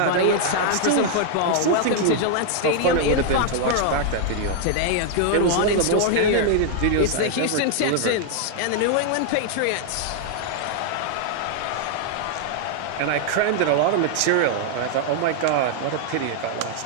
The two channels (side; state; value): both; different; correlation 0.00